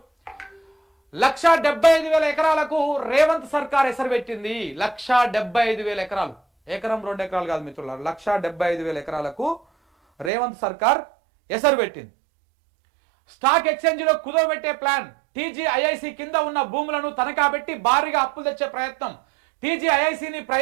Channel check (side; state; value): left; drops out; at 10.3 s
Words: 1,75,000 ఎకరాలకు రేవంత్ సర్కార్ ఎసరు పెట్టింది. 1,75,000 ఎకరాలు, ఎకరం 2 ఎకరాలు కాదు మిత్రులారా, 1,75,000 ఎకరాలకు రేవంత్ సర్కార్ ఎసరు పెట్టింది. స్టాక్ ఎక్స్చేంజ్లో కుదవబెట్టే ప్లాన్. టీజీఐఐసి కింద ఉన్న భూములను తనఖా పెట్టి భారీగా అప్పులు తెచ్చే ప్రయత్నం. టీజీఐఐసిని